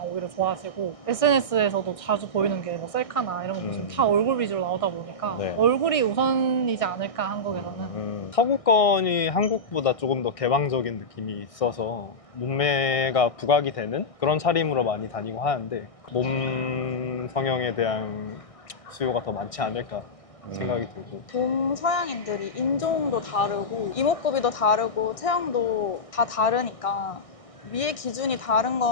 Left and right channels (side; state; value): right; late; 1.6 ms